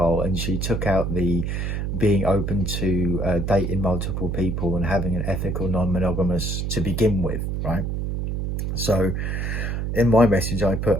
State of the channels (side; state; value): right; noise; hum, 2 dB below the sound